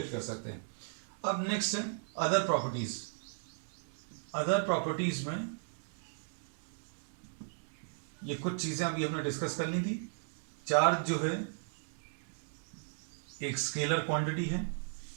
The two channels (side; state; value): left; silent; digital silence